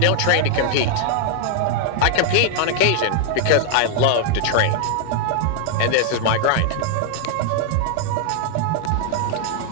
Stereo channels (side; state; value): both; different; correlation 0.00